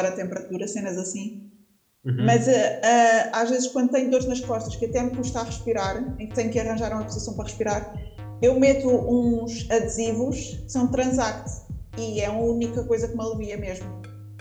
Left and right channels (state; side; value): identical; both; correlation 1.00